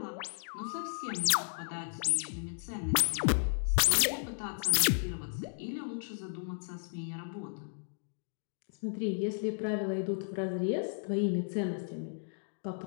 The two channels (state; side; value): silent; right; digital silence